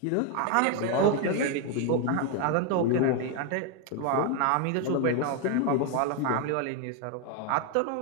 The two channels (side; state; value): both; different; correlation 0.01